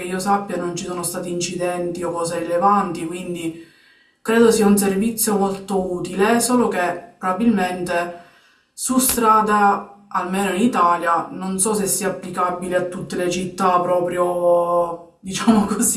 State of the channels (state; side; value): identical; both; correlation 1.00